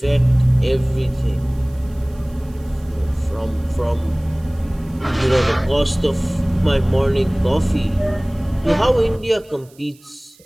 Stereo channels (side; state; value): right; noise; hiss, 28 dB below the sound